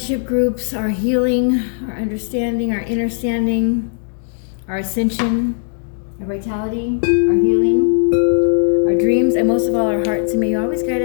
groups, our healing, our understanding, our understanding, our ascension, our vitality, our healing, our dreams, and most of all our hearts. And may you always guide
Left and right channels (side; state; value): right; silent; digital silence